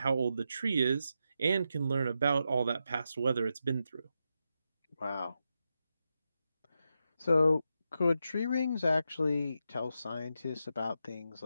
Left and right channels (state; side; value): inverted; both; correlation -0.86